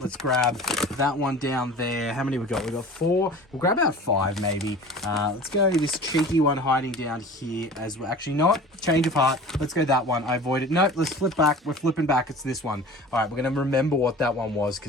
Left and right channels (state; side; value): normal; both; correlation 0.40